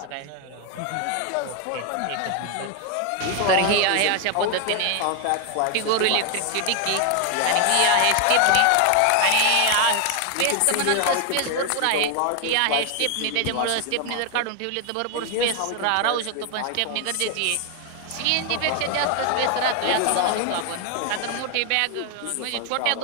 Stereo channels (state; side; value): different; both; correlation 0.00